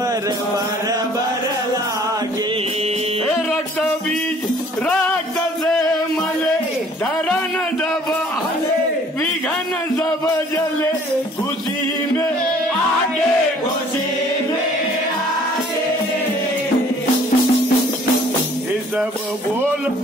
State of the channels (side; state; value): both; normal; correlation 0.56